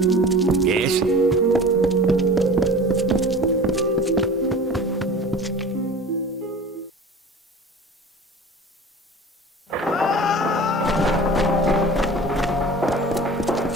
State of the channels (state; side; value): normal; both; correlation 0.39